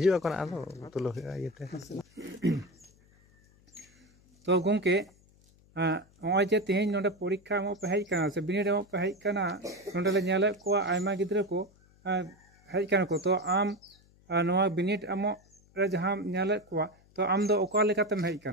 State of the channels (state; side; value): noise; left; hum, 30 dB below the sound